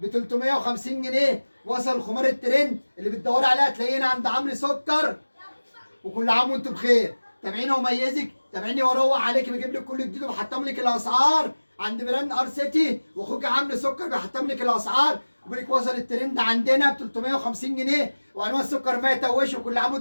350 جنيه. وصل الخمار الترند اللي بتدوري عليها تلاقينا عند عمرو سكر. وكل عام وانتم بخير. تابعيني وميزك، تابعيني واروق عليك، بجيب لك كل جديد وبحطم لك الاسعار عند براند ار سيتي، واخوك عمرو سكر بيحطم لك الاسعار. وبيقول لك وصل الترند عندنا ب 350 جنيه، وانواع السكر ما يتوش. وكل عام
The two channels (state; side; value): inverted; both; correlation -1.00